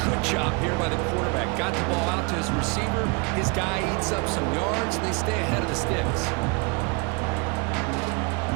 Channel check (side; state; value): left; quieter; 30.4 dB